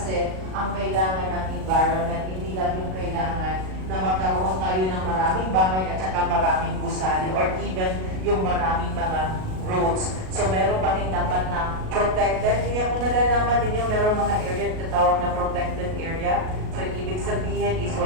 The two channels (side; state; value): left; late; 38 ms